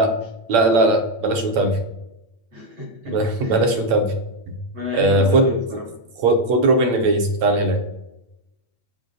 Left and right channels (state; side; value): late; left; 8.7 ms